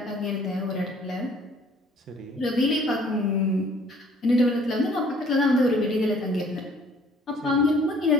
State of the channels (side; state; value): both; normal; correlation 0.57